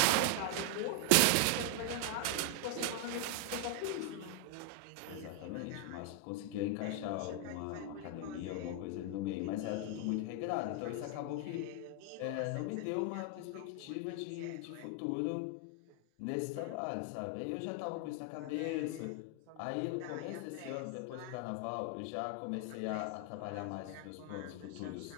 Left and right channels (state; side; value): different; both; correlation 0.00